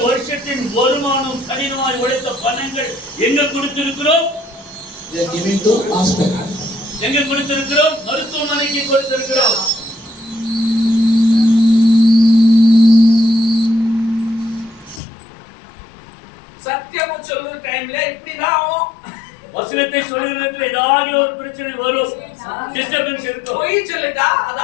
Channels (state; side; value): drops out; right; at 15.0 s